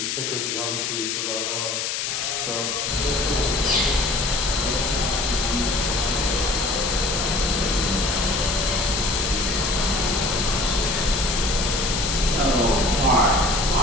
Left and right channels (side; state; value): left; noise; hiss, 1 dB below the sound